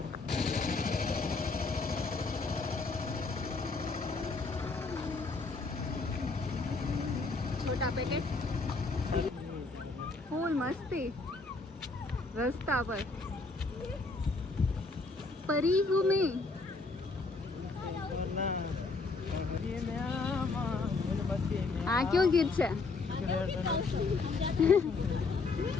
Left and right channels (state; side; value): quieter; right; 3.8 dB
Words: छोटा पैकेट फूल मस्ती रास्ता पर परी हूँ मैं. આ કયો ગીત છે?